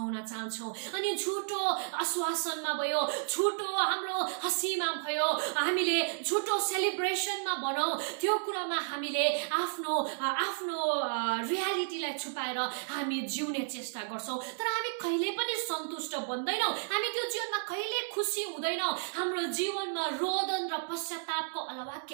चाहन्छौँ। अनि झुटो आश्वासनमा भयो, झुटो हाम्रो हँसीमा भयो, हामीले झुटो सेलिब्रेसनमा भनौँ, त्यो कुरामा हामीले आफ्नो रियालिटीलाई छुपाएर हामी जिउने चेष्टा गर्छौँ। तर हामी कहिले पनि सन्तुष्ट बन्दैनौँ, हामी त्यो जीवनमा कहिले खुसी हुँदैनौँ, हाम्रो जीवनमा रोदन र पश्चातापको अलावा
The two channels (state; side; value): silent; left; digital silence